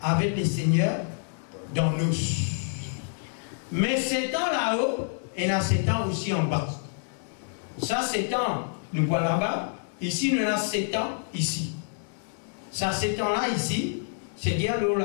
avec le Seigneur dans nous. Mais 7 ans là-haut, et il y a 7 ans aussi en bas. Ça, 7 ans, nous voilà là-bas. Ici, nous avons 7 ans ici. Ça, 7 ans là, ici, c'est-à-dire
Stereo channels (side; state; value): right; silent; digital silence